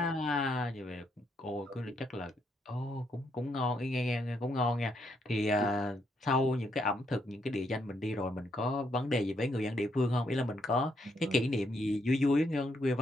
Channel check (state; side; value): normal; both; correlation 0.76